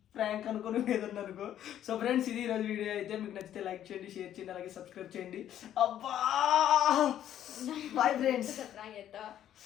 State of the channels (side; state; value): right; quieter; 11.0 dB